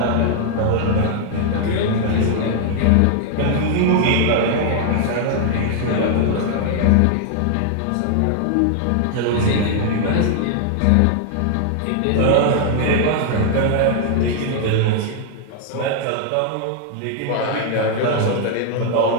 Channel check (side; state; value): both; different; correlation 0.00